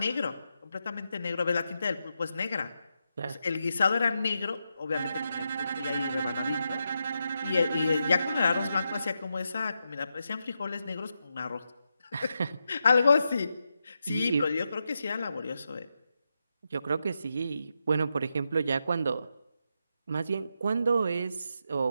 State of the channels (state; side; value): inverted; both; correlation -0.85